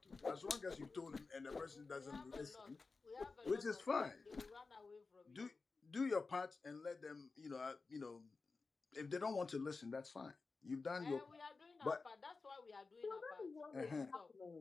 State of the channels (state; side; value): quieter; right; 4.1 dB